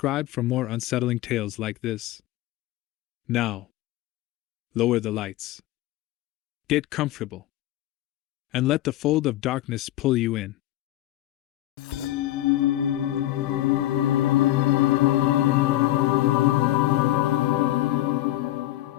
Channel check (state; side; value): quieter; right; 15.1 dB